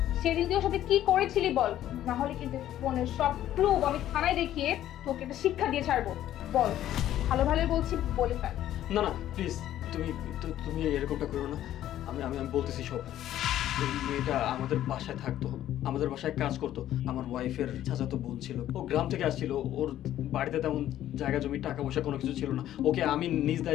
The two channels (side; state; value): right; quieter; 12.4 dB